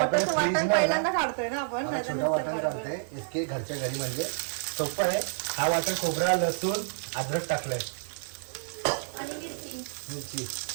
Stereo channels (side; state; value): left; silent; digital silence